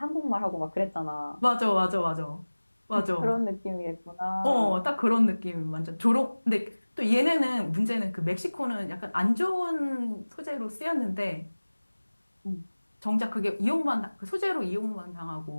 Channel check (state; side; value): inverted; both; correlation -1.00